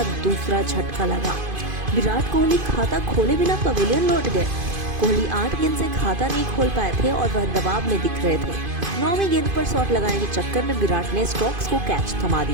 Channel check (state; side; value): late; left; 2.5 ms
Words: दूसरा झटका लगा। विराट कोहली खाता खोले बिना पवेलियन लौट गए। कोहली 8 गेंद से खाता नहीं खोल पाए थे और वह दबाव में दिख रहे थे। 9वीं गेंद पर शॉट लगाने के चक्कर में विराट ने स्टोक्स को कैच थमा